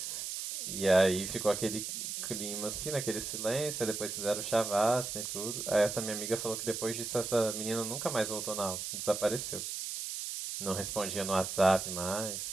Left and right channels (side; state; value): right; noise; hiss, 4 dB below the sound